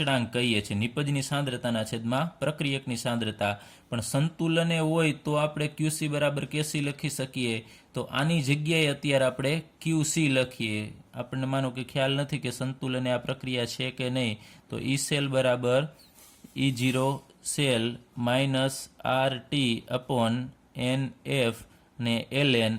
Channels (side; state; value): both; identical; correlation 1.00